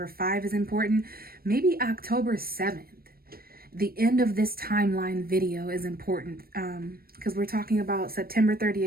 5 is important. Maybe October 7th. The end of this timeline video is important, because we're talking about September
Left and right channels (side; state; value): left; late; 0.44 ms